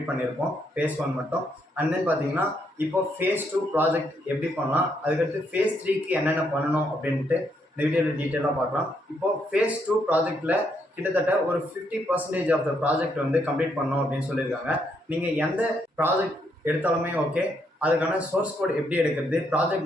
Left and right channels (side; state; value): both; normal; correlation 0.75